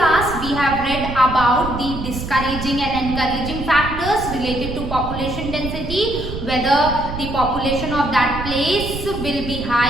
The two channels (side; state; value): right; noise; rumble, 7 dB below the sound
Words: we have read about the discouraging and encouraging factors related to population density, whether the population of that place will be